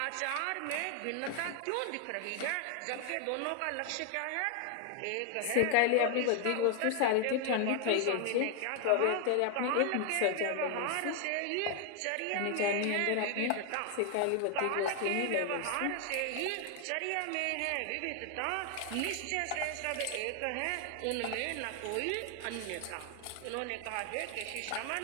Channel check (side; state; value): both; different; correlation 0.00